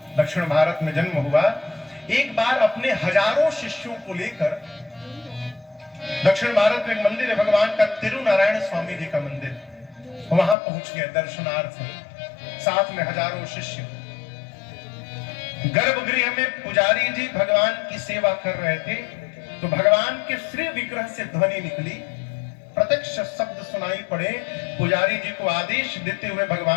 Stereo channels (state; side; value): drops out; right; at 10.6 s